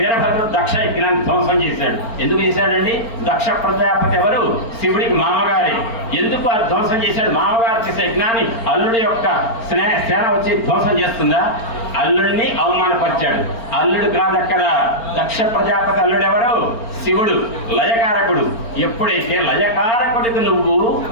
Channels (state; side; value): late; right; 4.4 ms